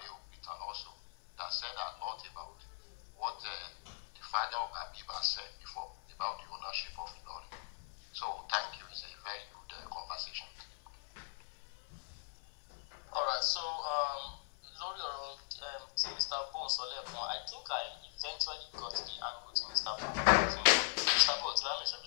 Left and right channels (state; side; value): silent; right; 51 dB below the other